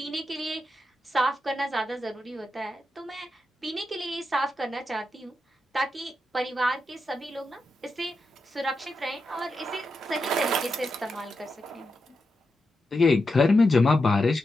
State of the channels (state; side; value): normal; both; correlation 0.87